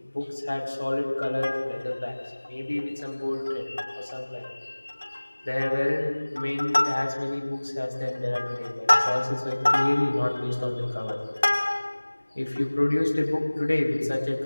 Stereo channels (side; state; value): both; inverted; correlation -1.00